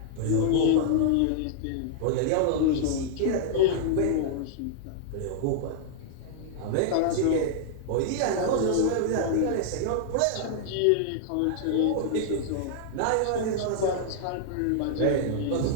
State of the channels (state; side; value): different; both; correlation -0.01